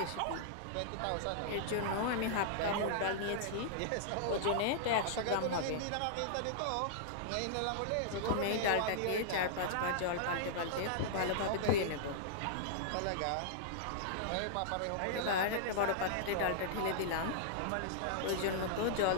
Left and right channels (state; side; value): different; both; correlation -0.02